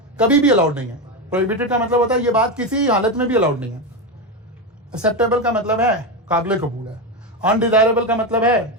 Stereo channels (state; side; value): normal; both; correlation 0.13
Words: कभी भी अलाउड नहीं है। प्रोहिबिटेड का मतलब होता है ये बात किसी हालत में भी अलाउड नहीं है। एक्सेप्टेबल का मतलब है काबिल कबूल है। अनडिजायरेबल का मतलब